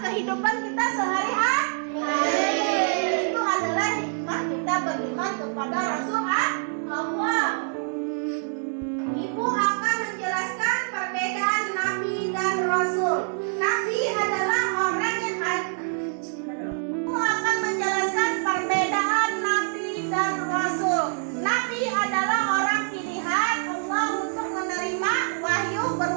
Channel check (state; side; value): silent; left; 57 dB below the other